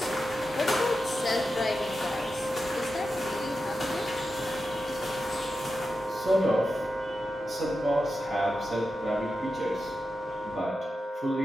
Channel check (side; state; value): both; normal; correlation 0.90